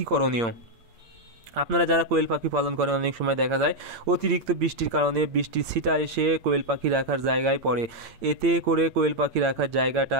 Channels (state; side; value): late; left; 8.7 ms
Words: করণীয়। আপনারা যারা কোয়েল পাখি পালন করেন, অনেক সময় দেখা যায় অতিরিক্ত বৃষ্টির কারণে বৃষ্টির ছিটা এসে কোয়েল পাখি রাখার জায়গায় পড়ে। এতে করে কোয়েল পাখি রাখার জায়গাটা